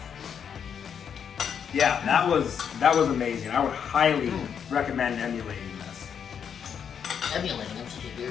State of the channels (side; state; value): right; quieter; 7.7 dB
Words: Yeah, that was amazing. I would highly recommend emulating this. Emulating, I'm such a